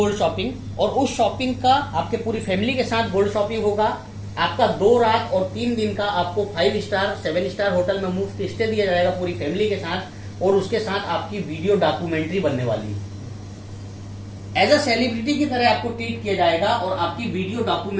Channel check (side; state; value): both; identical; correlation 1.00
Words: शॉपिंग। और उस शॉपिंग का आपके पूरी फैमिली के साथ गोल्ड शॉपिंग होगा। आपका 2 रात और 3 दिन का आपको 5 स्टार 7 स्टार होटल में मुफ्त स्टे दिया जाएगा पूरी फैमिली के साथ। और उसके साथ आपकी वीडियो डॉक्यूमेंट्री बनने वाली है। एज अ सेलिब्रिटी की तरह आपको ट्रीट किया जाएगा और आपकी वीडियो